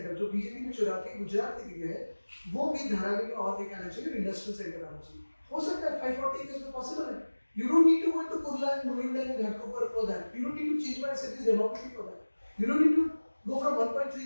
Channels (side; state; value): both; inverted; correlation -1.00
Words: जो बीजेपी ने चुरा के गुजरात लेके गया है, वो भी धारावी में और लेके आना चाहिए, इंडस्ट्रियल सेंटर आना चाहिए. हो सकता है 540 एकर्स में पॉसिबल है. You don't need to go into Kurla and Mulund and Ghatkopar for that. You don't need to change my city's demography for that. You don't need to go from